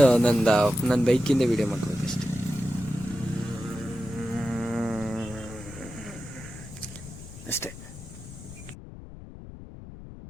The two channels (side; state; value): left; noise; rumble, 14 dB below the sound